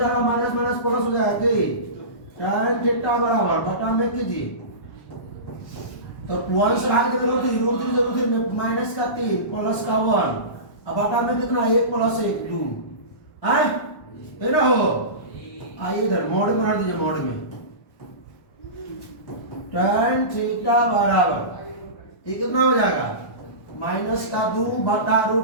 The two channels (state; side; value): late; right; 1.1 ms